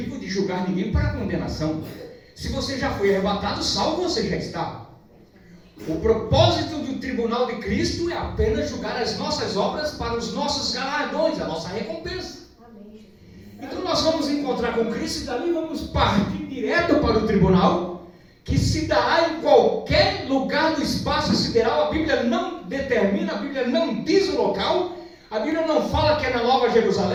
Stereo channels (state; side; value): identical; both; correlation 1.00